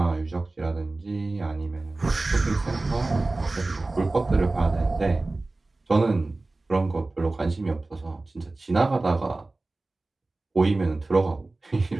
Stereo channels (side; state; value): left; quieter; 3.1 dB